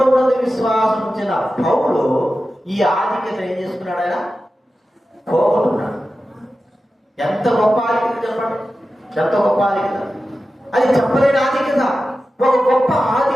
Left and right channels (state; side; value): normal; both; correlation 0.93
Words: విశ్వాసం ఉంచిన పౌలు ఈ ఆధిక్యత ఏం చేసుకున్నాడు? ఆయన పోగొట్టున్నాడు. ఎంత గొప్ప ఆధిక్యత చెప్పండి, ఎంత గొప్ప ఆధిక్యత! అది చెప్పలేని ఆధిక్యత. ఒక గొప్ప